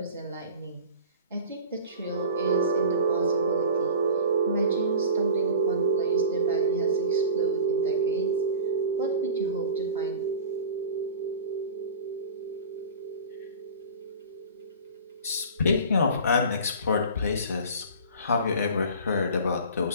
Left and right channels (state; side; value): inverted; both; correlation -0.38